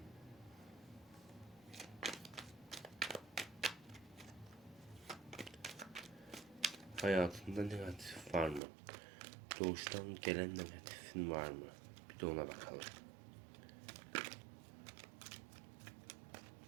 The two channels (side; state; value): left; drops out; at 8.6 s